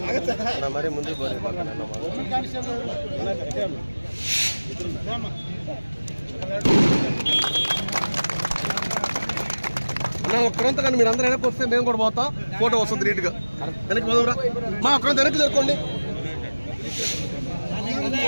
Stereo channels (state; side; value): inverted; both; correlation -1.00